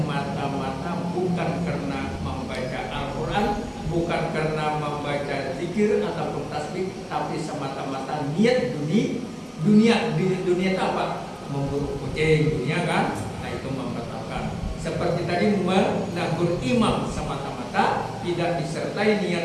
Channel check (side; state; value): both; identical; correlation 1.00